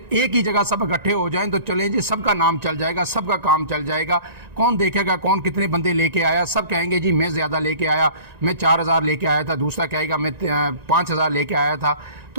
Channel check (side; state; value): left; late; 1.9 ms